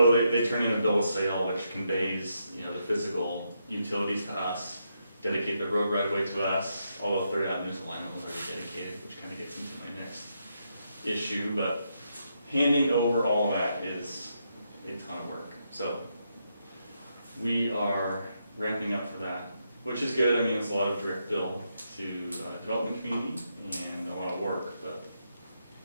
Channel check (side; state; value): both; inverted; correlation -0.80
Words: they turn in a bill of sale, which conveys, the physical utilities to us, dedicate the road right away to us, although Third Avenue's alignment was already dedicated, which kind of gets into my next issue, but handing over all of that is a ton of work. So we are ramping up for that, which is good. I mean, it's a lot of direct bill to development community and a lot of work, but